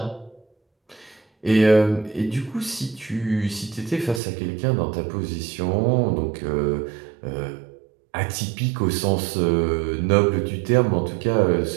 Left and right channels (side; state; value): left; drops out; at 4.2 s